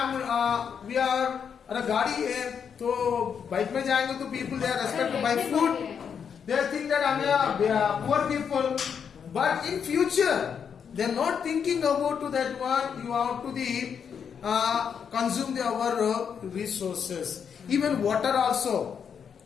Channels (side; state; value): right; quieter; 7.2 dB